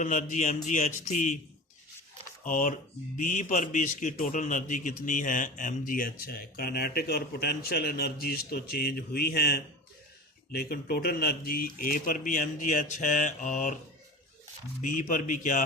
एनर्जी mgh थी और बी पर भी इसकी टोटल एनर्जी कितनी है, mgh है। काइनेटिक और पोटेंशियल एनर्जीज तो चेंज हुई हैं, लेकिन टोटल एनर्जी ए पर भी mgh है और बी पर भी क्या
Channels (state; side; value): normal; both; correlation 0.33